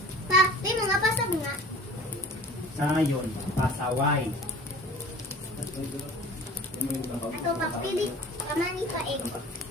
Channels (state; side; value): normal; both; correlation 0.44